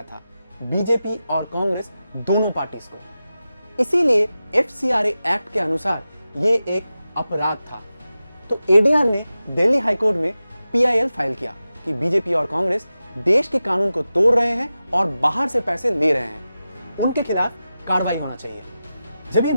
था, बीजेपी और कांग्रेस दोनों पार्टीज को। इसीलिए FCRA एक्ट के अनुसार ये एक अपराध था। तो ADR ने दिल्ली हाईकोर्ट में PIL फाइल किया कि बीजेपी और कांग्रेस देश के कानून को तोड़ रहे हैं और बाहर से पैसे ले रहे हैं, उनके खिलाफ कार्रवाई होना चाहिए। जब ये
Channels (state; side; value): inverted; both; correlation -0.93